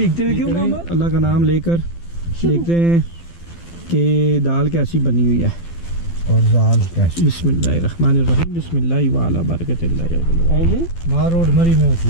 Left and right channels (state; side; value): late; right; 12 ms